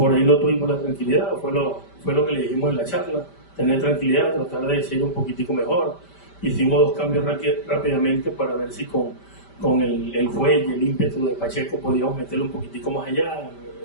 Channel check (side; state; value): right; late; 5.1 ms